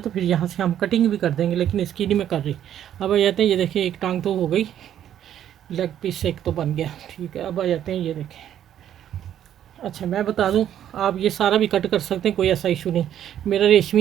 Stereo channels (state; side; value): quieter; left; 10.5 dB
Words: तो फिर यहाँ से हम कटिंग भी कर देंगे, लेकिन इसकी नहीं मैं कर रही। अब आ जाते हैं, ये देखें एक टांग तो हो गई, लेग पीस एक तो बन गया, ठीक है। अब आ जाते हैं, ये देखें। अच्छा मैं बता दूं, आप ये सारा भी कट कर सकते हैं, कोई ऐसा इशू नहीं। मेरा